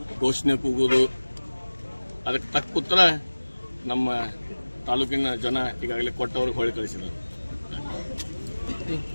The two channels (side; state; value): both; inverted; correlation -1.00